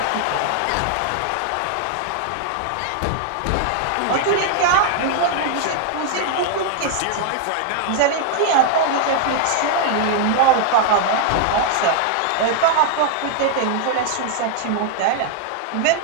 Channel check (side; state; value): both; different; correlation 0.00